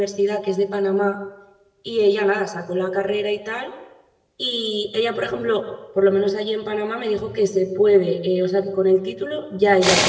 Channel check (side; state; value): both; identical; correlation 1.00